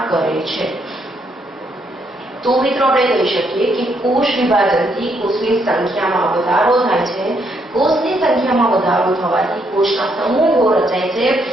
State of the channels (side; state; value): both; normal; correlation 0.74